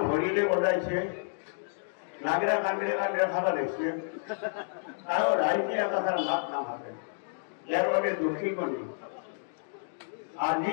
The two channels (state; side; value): silent; right; digital silence